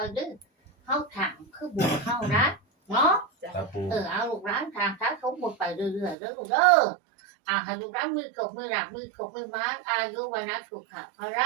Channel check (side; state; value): left; drops out; at 6.2 s